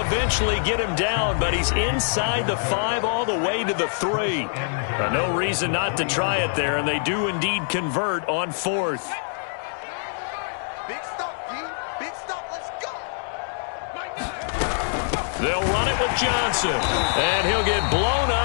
eventually get him down, but he's inside the 5 all the way to the 3. No reason not to try it there, and they do indeed convert on fourth. Big stop, D. Big stop. Let's go. They'll run it with Johnson, and he'll get blown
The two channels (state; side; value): silent; right; digital silence